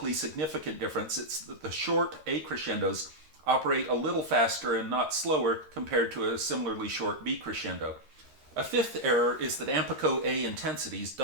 significant difference, it's that the short A crescendos operate a little faster and not slower compared to a similarly short B crescendo. A fifth error is that Ampico A intensities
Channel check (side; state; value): left; late; 13 ms